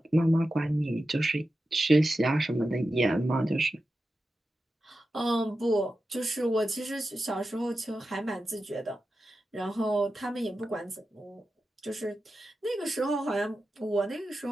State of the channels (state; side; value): normal; both; correlation 0.92